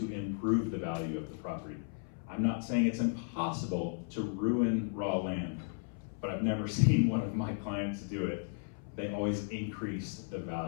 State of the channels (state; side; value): silent; right; 55 dB below the other